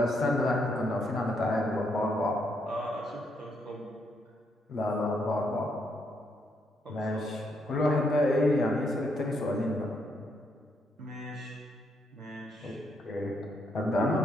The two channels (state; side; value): normal; both; correlation 0.76